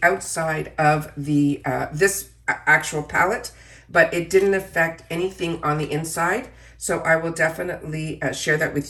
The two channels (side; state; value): both; identical; correlation 1.00